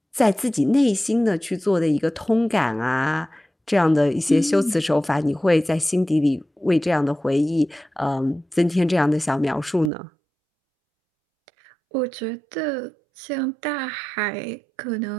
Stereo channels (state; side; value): drops out; left; at 9.9 s